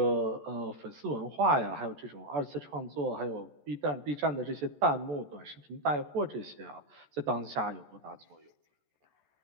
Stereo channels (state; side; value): late; left; 14 ms